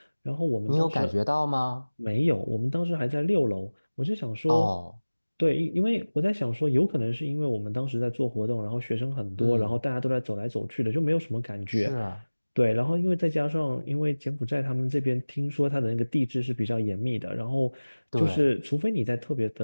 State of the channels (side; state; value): both; inverted; correlation -1.00